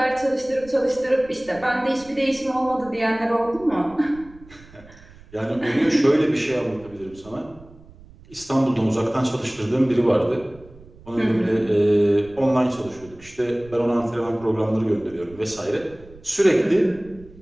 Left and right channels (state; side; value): noise; right; rumble, 22 dB below the sound